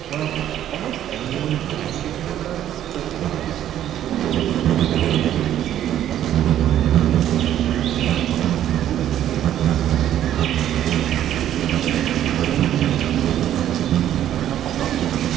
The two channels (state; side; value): quieter; left; 11.4 dB